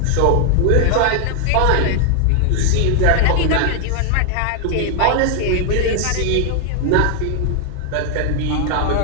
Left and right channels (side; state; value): both; different; correlation 0.00